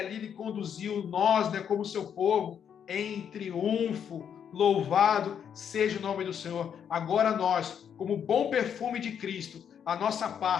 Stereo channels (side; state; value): right; quieter; 8.2 dB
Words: ele conduziu nós, né, como seu povo, em triunfo. Louvado seja o nome do Senhor. Agora nós, como bom perfume de Cristo, a nossa